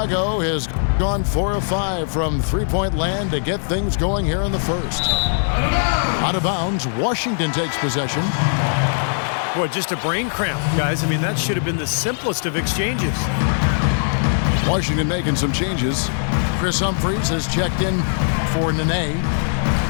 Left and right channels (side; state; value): right; silent; digital silence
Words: has gone 4 of 5 from three-point land to get things going here in the first. Out of bounds, Washington takes possession. Boy, just a brain cramp, guys. I mean, that should have been the simplest of exchanges. Washington making some changes. Chris Humphries has checked in for Nene,